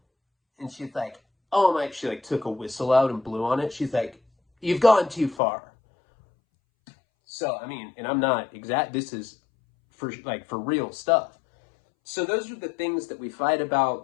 And she's like, oh my, she like took a whistle out and blew on it. She's like, you've gone too far. So, I mean, and I'm not exact, this is for real stuff. So those are the things that we fight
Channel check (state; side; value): drops out; right; at 5.4 s